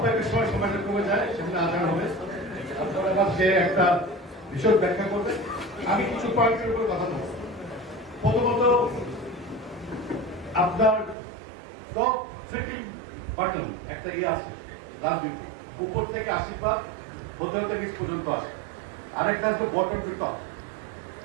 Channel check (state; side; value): drops out; left; at 11.2 s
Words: সময় সময়টা কমে যায়, সেখানে আজান হবে। আপনারা কাছে একটা বিষয় ব্যাখ্যা করবে, আমি কিছু পয়েন্টের উপর কথা বলব। প্রথমত, আপনার টপ ট্রিপিং বাটন একটা আছে রাজনীতি, উপর থেকে আশীর্বাদ, হোটেল থেকে নিচ পর্যন্ত আসে। আরেকটা হচ্ছে বটম টু টপ।